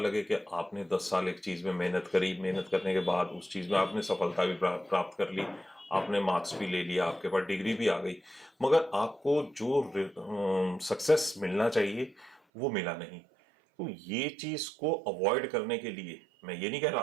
कि आपने 10 साल एक चीज में मेहनत करी, मेहनत करने के बाद उस चीज में आपने सफलता भी प्राप्त कर ली, आपने मार्क्स भी ले लिया, आपके पास डिग्री भी आ गई, मगर आपको जो सक्सेस मिलना चाहिए वो मिला नहीं। तो ये चीज को अवॉइड करने के लिए, मैं ये नहीं कह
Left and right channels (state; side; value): drops out; left; at 12.4 s